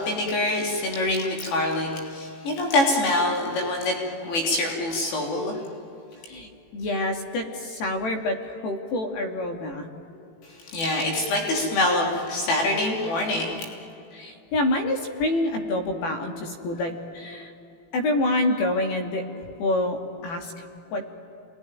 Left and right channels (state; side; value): late; right; 18 ms